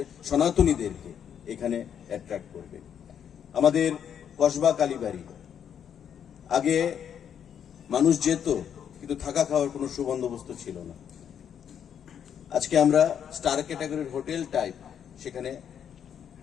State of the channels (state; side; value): quieter; right; 8.6 dB